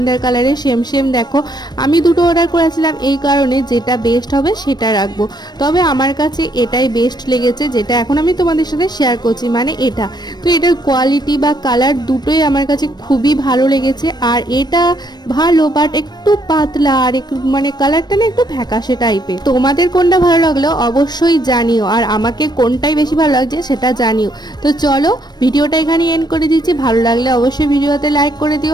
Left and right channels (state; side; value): late; right; 0.20 ms